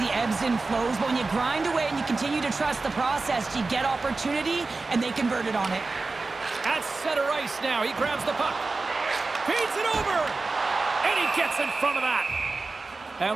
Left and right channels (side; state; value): left; quieter; 3.7 dB